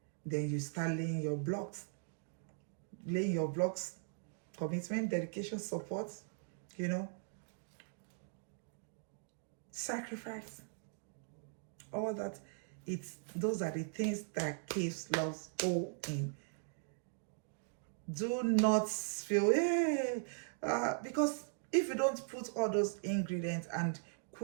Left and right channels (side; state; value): left; silent; digital silence